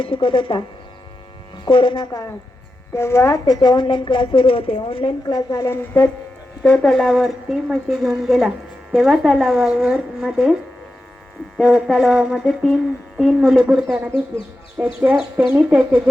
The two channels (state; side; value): normal; both; correlation 0.90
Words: शिकत होता. कोरोना काळात तेव्हा त्याचे ऑनलाईन क्लास सुरू होते. ऑनलाईन क्लास झाल्यानंतर तो तलावावरती म्हशी घेऊन गेला. तेव्हा तलावामध्ये तीन मुले बुडताना दिसली. त्यांनी त्याच्या